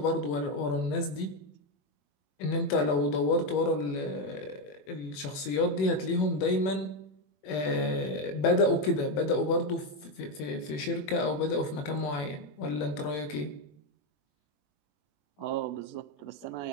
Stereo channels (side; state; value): right; late; 21 ms